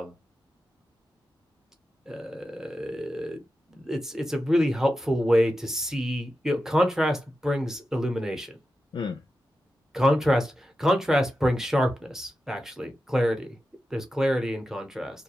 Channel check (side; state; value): both; normal; correlation 0.91